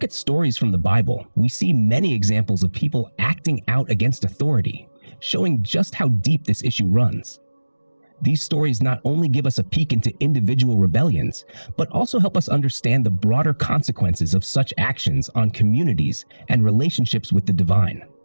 at stories from the Bible, we see many examples of people acting out against authority, showing just how deep this issue runs. These stories not only give us a peek into individual rebellions, but also help us understand the broader consequences of such actions on communities and relationships with the divine.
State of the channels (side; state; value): both; inverted; correlation -1.00